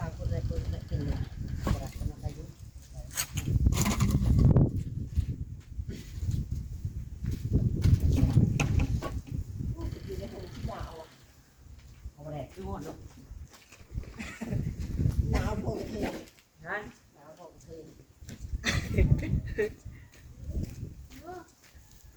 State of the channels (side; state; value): both; identical; correlation 1.00